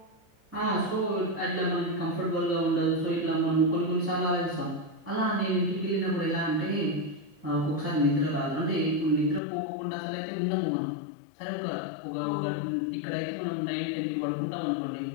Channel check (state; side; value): drops out; right; at 9.4 s